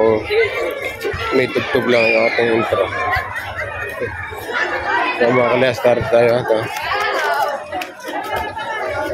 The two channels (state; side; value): identical; both; correlation 1.00